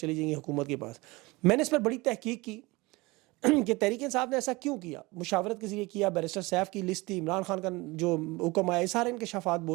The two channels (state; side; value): quieter; left; 23.0 dB